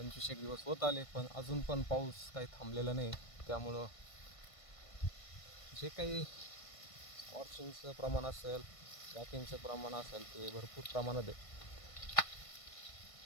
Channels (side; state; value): right; late; 1.5 ms